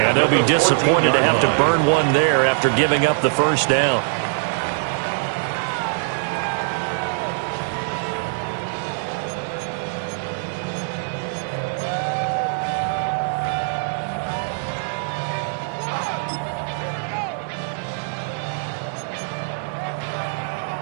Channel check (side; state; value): left; silent; digital silence